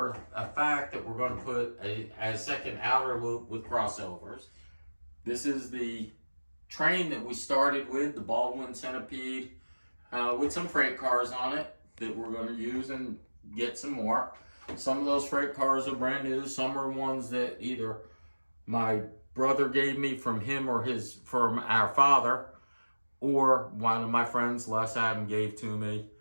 a fact that we're going to put a second outer loop with crossovers. This is the train that we started with, the Baldwin Centipede, with some freight cars on it that we're going to use and get some more. Some of those freight cars are brand new. Some are ones that either my brother gave me from him or from our father, or one of my friends, Les Adam, gave to me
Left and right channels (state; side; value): inverted; both; correlation -1.00